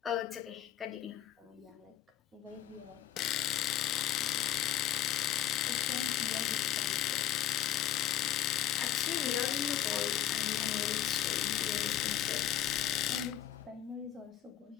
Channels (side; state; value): right; quieter; 11.3 dB